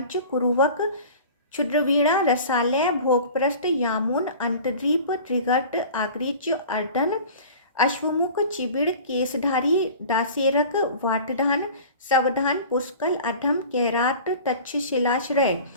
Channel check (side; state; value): both; inverted; correlation -0.41